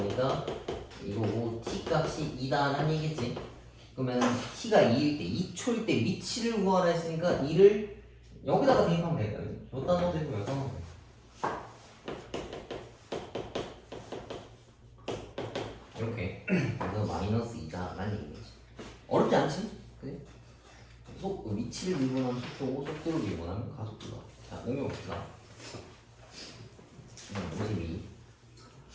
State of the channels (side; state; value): both; identical; correlation 1.00